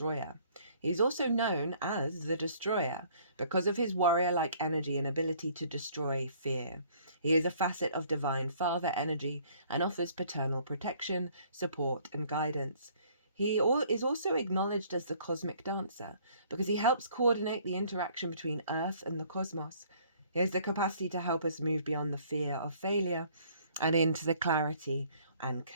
He is also known as the Destroyer because of his warrior-like energy and ability to destroy fear. He is a facet of divine father energy and offers paternal protection, support, and guidance. He is also acknowledged as the cosmic dancer because he helps coordinate the interaction between Earth and the cosmos. He has the capacity to help us move beyond the fear of failure and into clarity and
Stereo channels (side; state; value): both; inverted; correlation -0.59